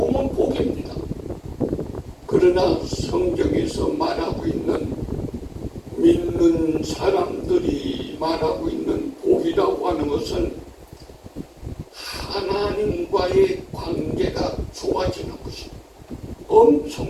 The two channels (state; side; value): identical; both; correlation 1.00